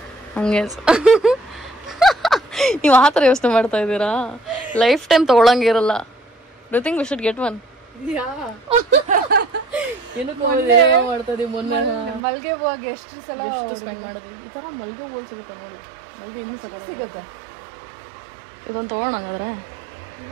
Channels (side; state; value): left; drops out; at 12.2 s